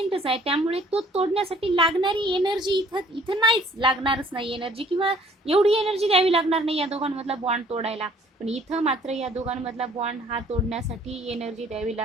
आहे त्यामुळे तो तोडण्यासाठी लागणारी एनर्जी इथं नाहीच लागणारच नाही एनर्जी किंवा एवढी एनर्जी द्यावी लागणार नाही या दोघांमधला बॉन्ड तोडायला. पण इथं मात्र या दोघांमधला बॉन्ड हा तोडण्यासाठी एनर्जी द्यावी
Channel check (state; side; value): normal; both; correlation 0.58